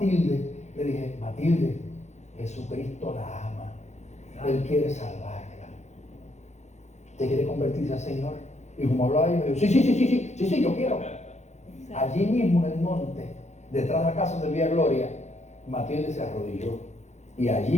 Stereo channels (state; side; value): late; right; 0.33 ms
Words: le dije: Matilde, Jesucristo la ama. Él quiere salvarla. ¿Usted quiere convertirse al Señor? Y como hablaba yo, me dijo: sí, yo quiero. Allí mismo en el monte, detrás de la casa de Villa Gloria, Matilde se arrodilló, y